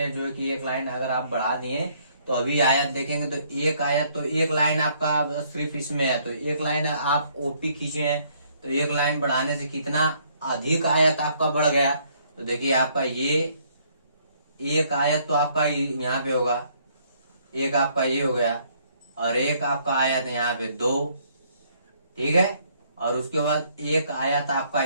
जो कि एक लाइन अगर आप बढ़ा दिए, तो अभी आयत देखेंगे तो एक आयत, तो एक लाइन आपका सिर्फ इसमें है, तो एक लाइन आप ओपी खींचे हैं, तो एक लाइन बढ़ाने से कितना अधिक आयत आपका बढ़ गया। तो देखिए आपका ये एक आयत तो आपका यहाँ पे होगा, एक आपका ये हो गया, और एक आपका आयत यहाँ पे 2। ठीक है, और उसके बाद एक आयत आपका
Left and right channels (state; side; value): inverted; both; correlation -0.66